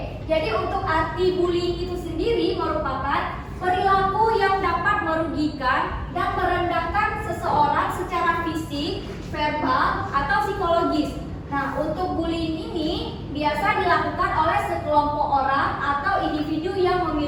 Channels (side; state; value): both; identical; correlation 1.00